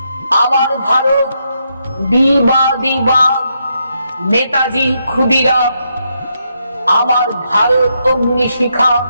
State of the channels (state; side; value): inverted; both; correlation -0.80